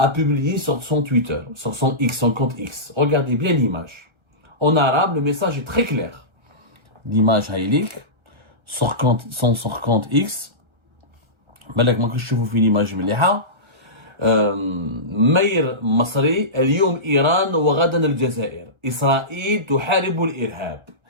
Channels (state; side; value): late; left; 1.3 ms